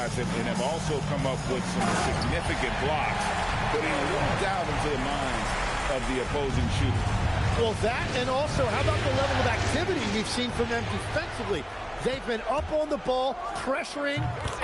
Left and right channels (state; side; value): identical; both; correlation 1.00